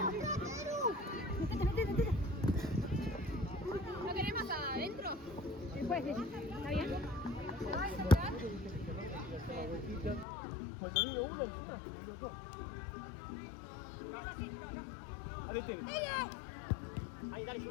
¿No querés más adentro? Después, ¿está bien? Cuando vino uno, encima, vino dos. Dale, Tere. Ahí, dale,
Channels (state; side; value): drops out; right; at 10.2 s